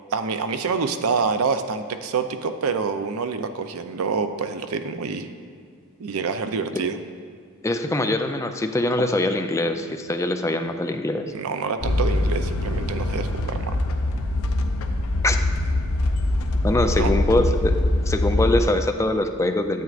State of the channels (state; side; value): normal; both; correlation 0.55